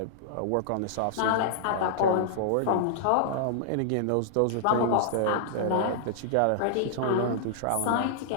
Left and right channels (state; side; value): different; both; correlation -0.01